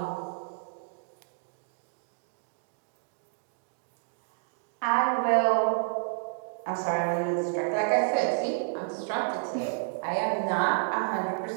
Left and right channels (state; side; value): silent; left; digital silence